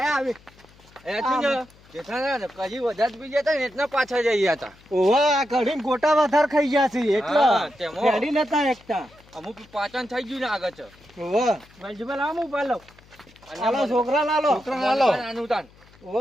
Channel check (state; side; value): noise; left; hum, 27 dB below the sound